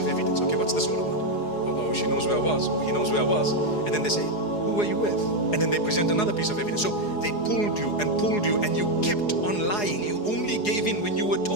evidence. Okay, what's this all about? Oh, she knows where I was. Oh, he knows where I was. And then they say, who were you with? And then they present another piece of evidence. So they pulled you and you kept on lying. You only gave in when you were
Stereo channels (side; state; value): right; late; 4.8 ms